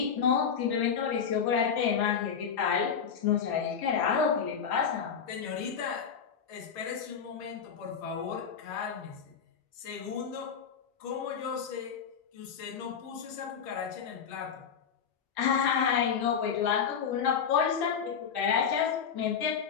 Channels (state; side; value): quieter; right; 7.0 dB